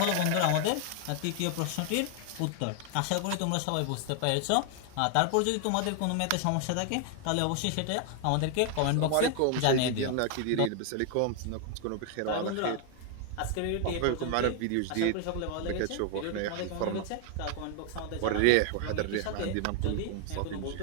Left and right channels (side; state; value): both; different; correlation 0.00